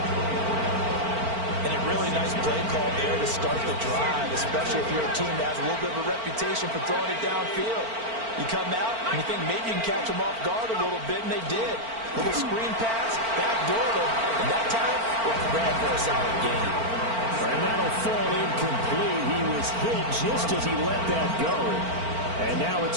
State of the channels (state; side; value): late; left; 4.4 ms